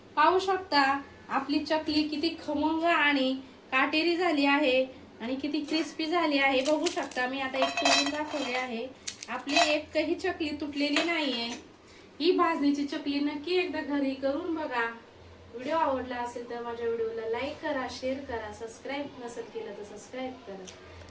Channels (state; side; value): identical; both; correlation 1.00